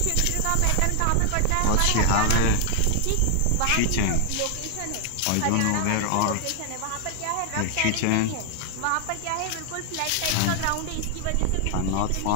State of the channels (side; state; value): both; different; correlation 0.00